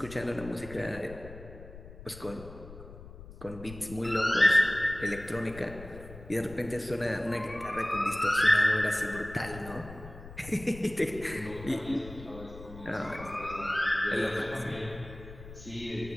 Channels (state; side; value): noise; left; rumble, 15 dB below the sound